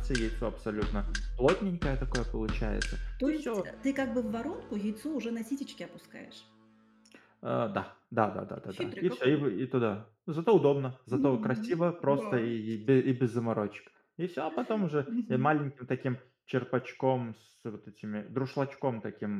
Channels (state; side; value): identical; both; correlation 1.00